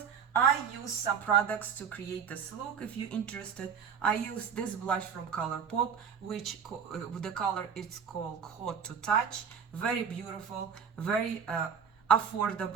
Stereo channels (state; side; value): quieter; left; 7.1 dB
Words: I use some products to create this look. If you're interested, I use this blush from ColourPop, which the color is called Hot to Touch. Very beautiful, very